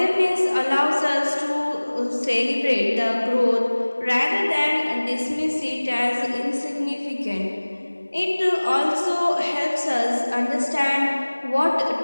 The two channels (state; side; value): inverted; both; correlation -1.00